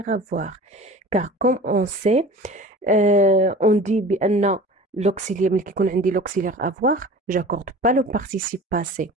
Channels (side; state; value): both; normal; correlation 0.40